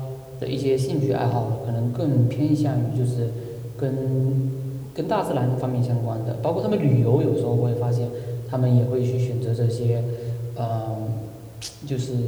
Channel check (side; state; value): both; identical; correlation 1.00